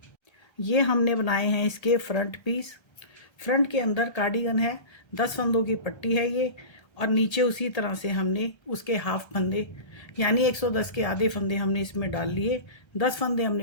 ये हमने बनाए हैं इसके फ्रंट पीस। फ्रंट के अंदर कार्डिगन है, 10 फंदों की पट्टी है ये, और नीचे उसी तरह से हमने उसके हाफ फंदे यानी 110 के आधे फंदे हमने इसमें डाल लिए। 10 फंदे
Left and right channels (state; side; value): late; right; 1.3 ms